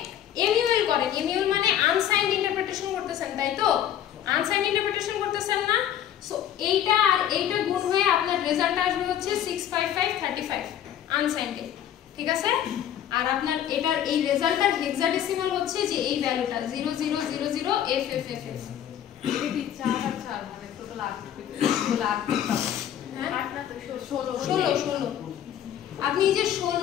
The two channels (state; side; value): quieter; right; 10.5 dB